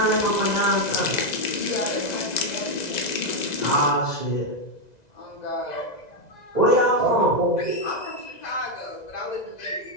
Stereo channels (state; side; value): late; right; 1.9 ms